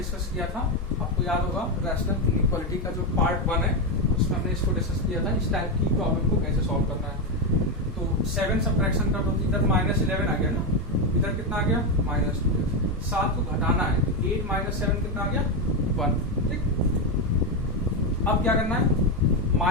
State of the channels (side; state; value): both; normal; correlation 0.08